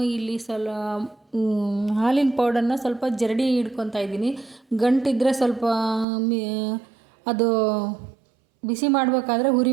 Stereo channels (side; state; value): left; drops out; at 6.1 s